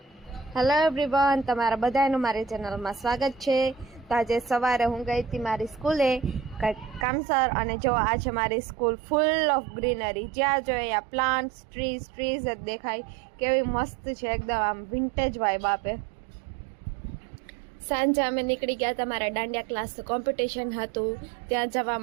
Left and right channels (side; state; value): left; drops out; at 7.1 s